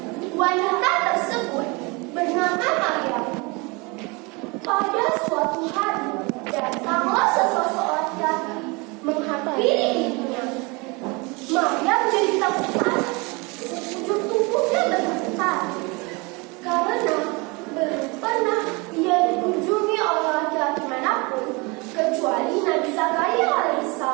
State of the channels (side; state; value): left; quieter; 27.7 dB